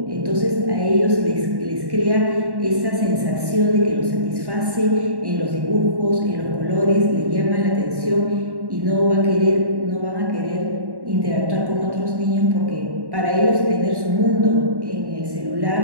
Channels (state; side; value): late; left; 1.1 ms